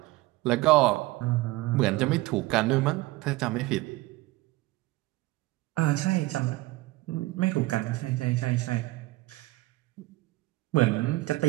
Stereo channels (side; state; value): left; quieter; 19.5 dB